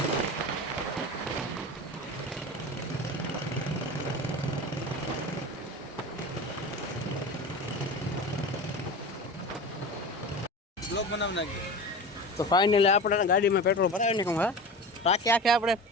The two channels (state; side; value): normal; both; correlation 0.31